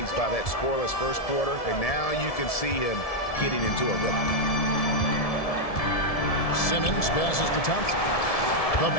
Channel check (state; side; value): late; right; 1.7 ms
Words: by that scoreless first quarter, and now you can see him getting into a rhythm. Simmons passes to Thompson. The